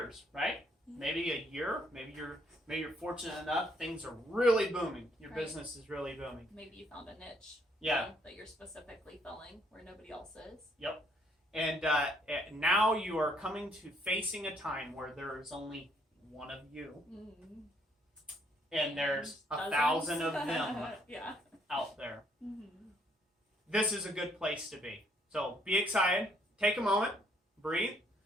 right? Maybe a year, maybe you're fortunate enough, things are really booming. Your business is really booming. Maybe you found a niche that you're specifically filling where nobody else is. Yep. And now you are coming to facing a time where there is only one of you. Mm-hmm. And there's 1,000 of them out there. Mm-hmm. This is a good place to be. So be excited. Take a moment. Breathe.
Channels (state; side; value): normal; both; correlation 0.68